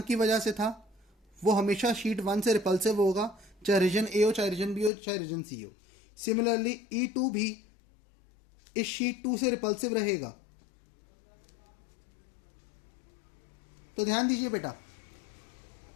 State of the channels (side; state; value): right; drops out; at 4.9 s